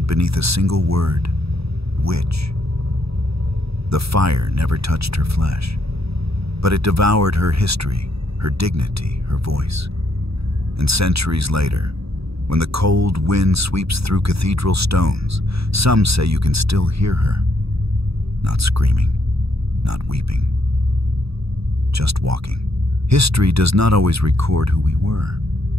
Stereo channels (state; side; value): late; left; 0.77 ms